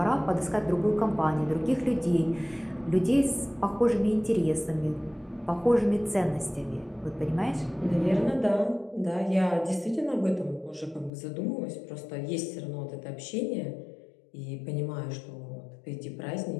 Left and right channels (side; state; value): right; drops out; at 11.1 s